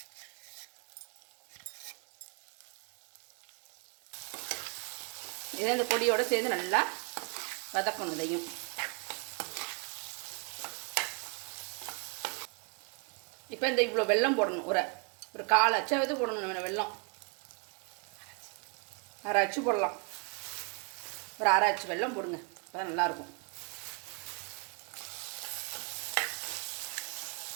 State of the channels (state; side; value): quieter; left; 35.4 dB